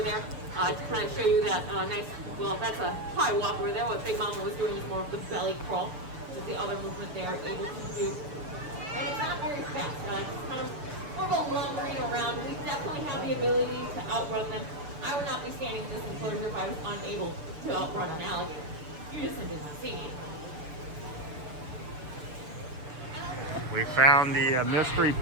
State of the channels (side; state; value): left; late; 6.8 ms